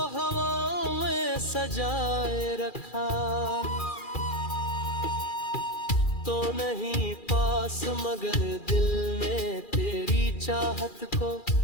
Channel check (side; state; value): right; late; 2.4 ms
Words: हवाओं में सजाए रखा। तो नहीं पास मगर दिल ने तेरी चाहत को